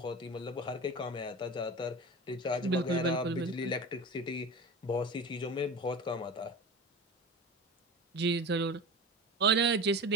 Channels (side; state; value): both; normal; correlation 0.30